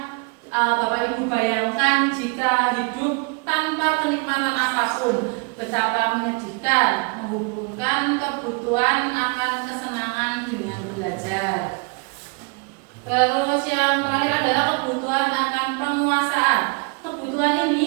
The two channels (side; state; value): left; quieter; 32.5 dB